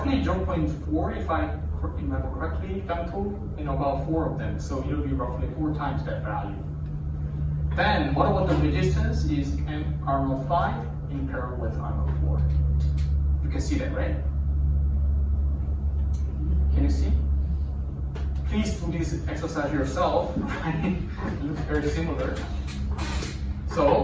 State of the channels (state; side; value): identical; both; correlation 1.00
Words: 0.4, if I remember correctly, femto in about 4 of them, so it will be roughly 4 times that value. Then, what about the resistance? Is R05 in parallel with R04. You can see that, right? Can you see? Please do this exercise yourself. It looks very similar.